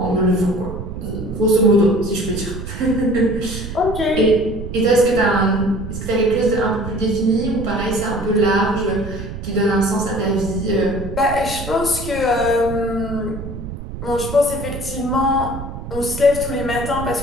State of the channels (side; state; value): right; noise; rumble, 9 dB below the sound